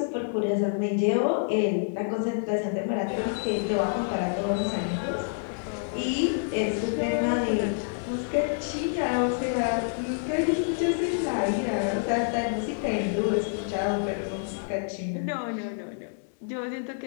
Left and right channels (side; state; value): right; silent; 60 dB below the other